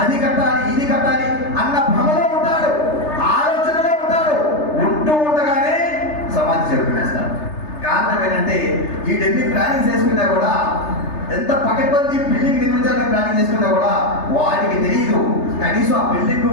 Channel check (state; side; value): late; right; 3.3 ms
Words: అది కట్టాలి, ఇది కట్టాలి అన్న భ్రమలో ఉంటాడు, ఆలోచనలో ఉంటాడు. ఉంటూ ఉండగానే సమాధి చెరుకునేస్తాడు. కారణం ఏంటంటే వీటన్ని ప్లానింగ్ చేసుకున్నా కూడా, ఎంత పకడ్బందీ బిల్డింగ్ నిర్మించాలని ప్లానింగ్ చేసుకున్నా కూడా వాడికి తెలియదు కనీసం ఆ బిల్డింగ్